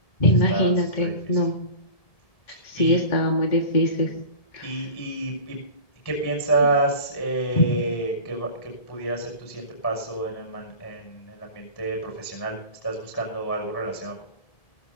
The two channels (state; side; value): late; right; 1.7 ms